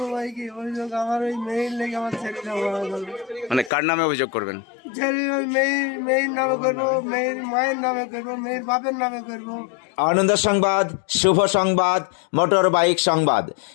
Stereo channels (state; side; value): drops out; right; at 3.7 s